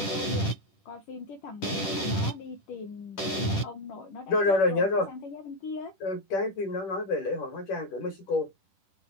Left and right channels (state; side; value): late; right; 10 ms